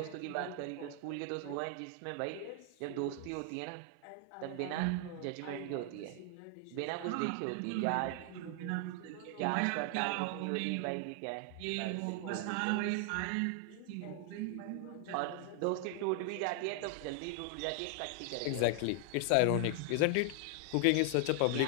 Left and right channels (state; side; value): different; both; correlation 0.00